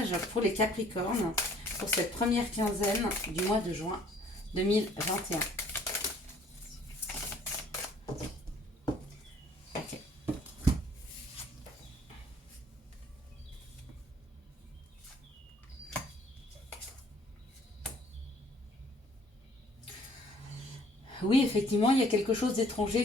pour les Capricornes pour cette première quinzaine du mois de juin 2021? Ok. Oui, effectivement, il y a quelque chose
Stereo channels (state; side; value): normal; both; correlation 0.58